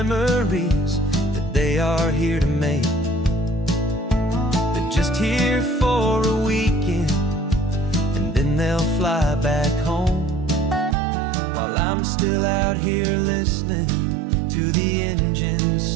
that they are here to make. They're just here for a weekend, and then they'll fly back home, while I'm still out here listening to the engine's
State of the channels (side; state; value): left; drops out; at 11.0 s